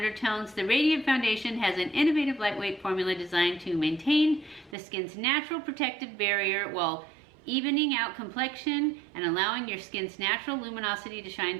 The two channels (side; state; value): left; drops out; at 4.8 s